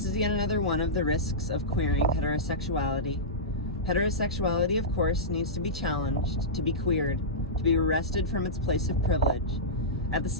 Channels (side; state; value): both; normal; correlation -0.15